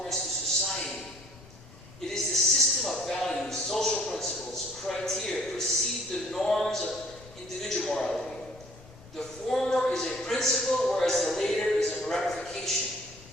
to society. It is the system of values, social principles, criteria, precede the norms of individual morality. The former is a principle, whereas the later is a ramification.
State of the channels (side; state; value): left; noise; rumble, 21 dB below the sound